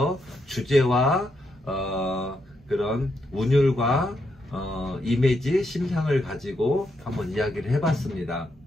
주제와 그런 운율과 이미지, 심상을 가지고 한번 이야기를 해봤습니다.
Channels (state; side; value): normal; both; correlation 0.80